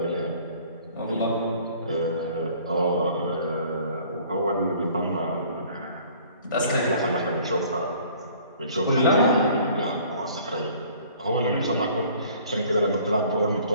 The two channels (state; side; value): inverted; both; correlation -0.53